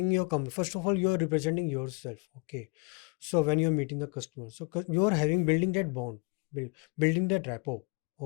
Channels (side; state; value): right; quieter; 29.0 dB